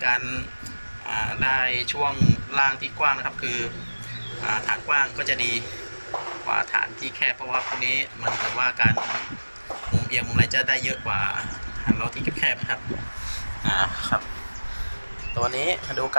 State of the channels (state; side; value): inverted; both; correlation -1.00